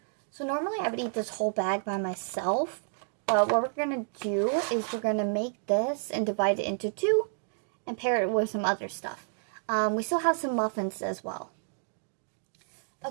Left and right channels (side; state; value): left; silent; digital silence